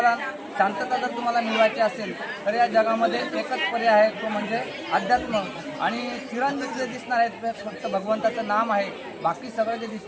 शांतता जर तुम्हाला मिळवायची असेल तर या जगामध्ये एकच पर्याय आहे, तो म्हणजे अध्यात्म। आणि चिरंजीव जे दिसणार आहे ते फक्त भगवंताचं नाम आहे, बाकी सगळं जे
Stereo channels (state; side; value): identical; both; correlation 1.00